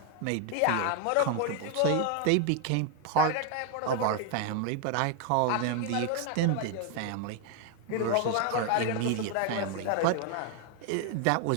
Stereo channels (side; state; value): both; different; correlation 0.00